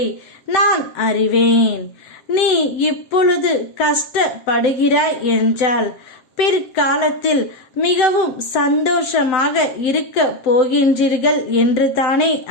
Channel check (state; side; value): late; right; 7.8 ms